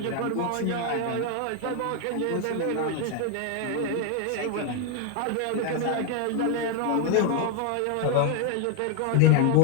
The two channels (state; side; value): different; both; correlation 0.00